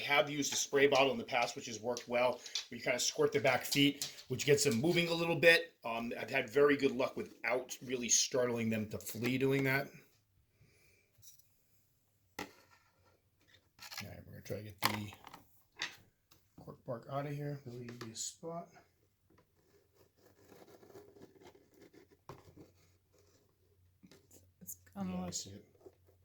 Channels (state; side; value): identical; both; correlation 1.00